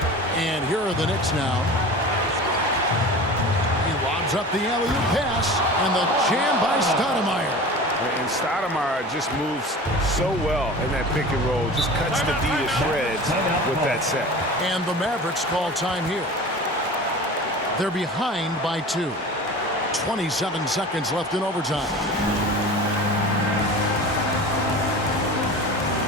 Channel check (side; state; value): both; normal; correlation 0.36